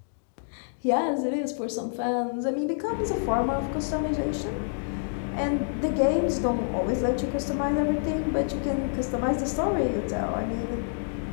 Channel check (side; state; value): right; silent; digital silence